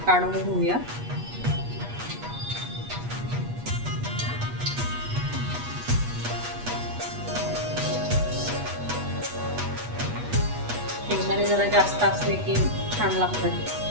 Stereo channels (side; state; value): left; late; 8.3 ms